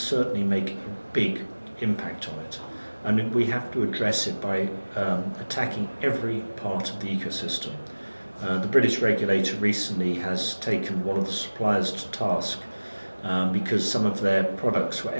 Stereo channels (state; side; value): inverted; both; correlation -1.00